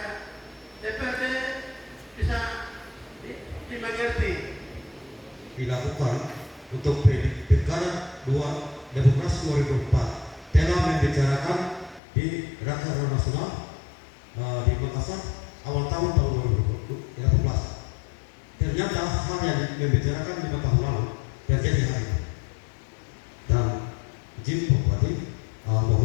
DPRD bisa dimengerti. Dilakukan untuk pilkada 2 Demokrasi 2004 telah membicarakan di Rakernas Nasional di Makassar awal tahun 2018. Ternyata hal yang membicarakan 5 tahun lalu terjadi hari ini. Dan izin Bupati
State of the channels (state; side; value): drops out; right; at 12.0 s